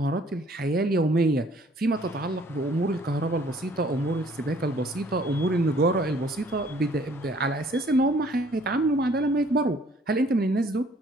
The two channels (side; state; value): both; normal; correlation 0.59